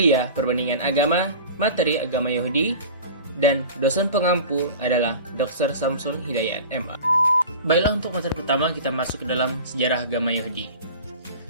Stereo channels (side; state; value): both; inverted; correlation -0.37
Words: Perbandingan Agama, materi Agama Yahudi, dan dosen pengampu adalah Dr. Samsul Hidayat, MA. Baiklah, untuk materi pertama kita masuk ke dalam sejarah agama Yahudi.